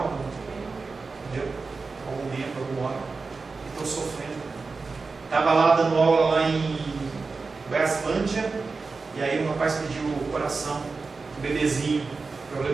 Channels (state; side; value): quieter; left; 4.2 dB